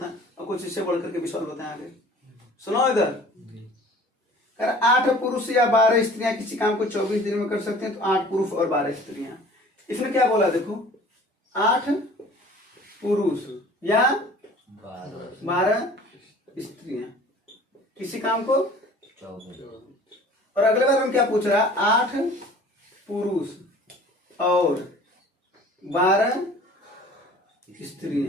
और कुछ इससे बढ़ करके भी सवाल बताएं आगे। सुनो इधर, कर 8 पुरुष या 12 स्त्रियां किसी काम को 24 दिन में कर सकते हैं, तो 8 पुरुष और 12 स्त्रियां। इसने क्या बोला? देखो 8 पुरुष या 12 स्त्रियां किसी काम को, और अगले बार हम क्या पूछ रहा है? 8 पुरुष और 12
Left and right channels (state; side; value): normal; both; correlation 0.48